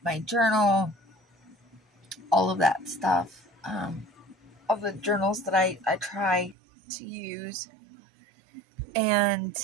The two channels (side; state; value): left; drops out; at 6.6 s